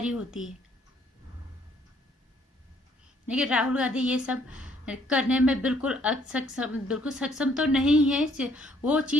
होती है। लेकिन राहुल गांधी ये सब करने में बिल्कुल सक्षम तो नहीं है, वो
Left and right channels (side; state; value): both; normal; correlation 0.65